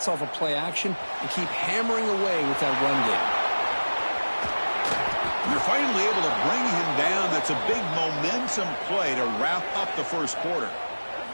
off of play action, and keep hammering away with that run game. You're finally able to bring him down. That's a big momentum play to wrap up the first quarter.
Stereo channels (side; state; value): both; inverted; correlation -1.00